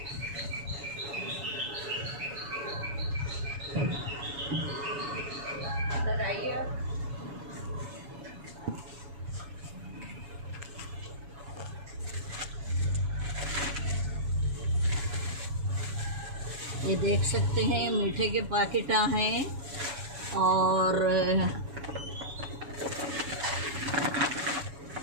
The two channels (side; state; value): left; late; 7.1 ms